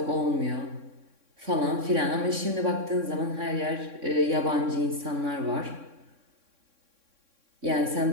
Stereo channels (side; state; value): left; late; 3.6 ms